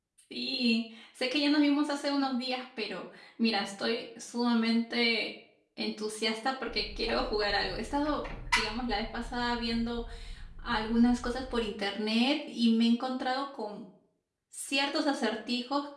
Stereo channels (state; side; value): identical; both; correlation 1.00